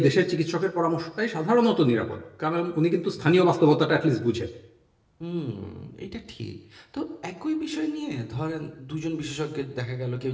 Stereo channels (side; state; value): both; identical; correlation 1.00